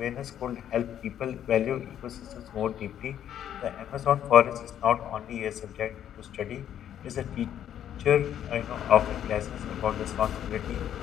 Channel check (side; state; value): right; quieter; 10.2 dB